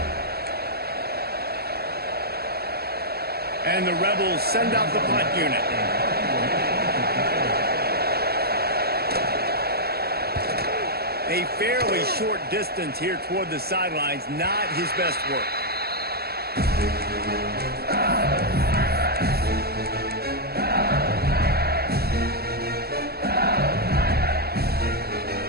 And the Rebels send out the punt unit. A fairly short distance here toward the sidelines, not his best work.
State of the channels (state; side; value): late; left; 0.46 ms